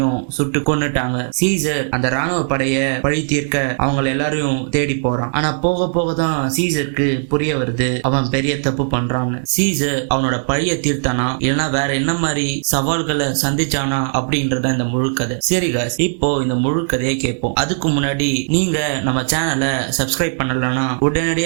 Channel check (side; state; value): left; silent; digital silence